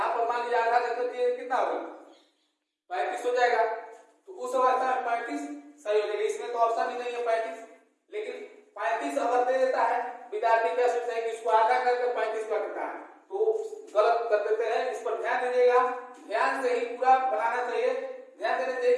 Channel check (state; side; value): identical; both; correlation 1.00